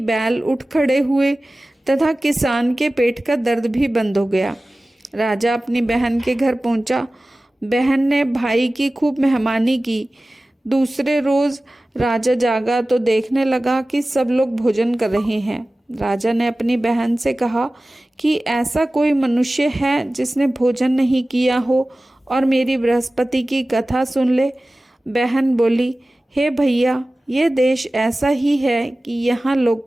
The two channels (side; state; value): both; normal; correlation 0.97